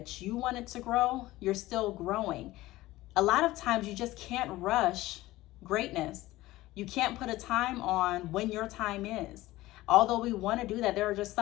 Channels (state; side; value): quieter; right; 17.5 dB